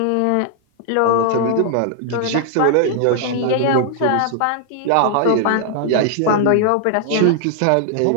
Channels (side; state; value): both; different; correlation 0.00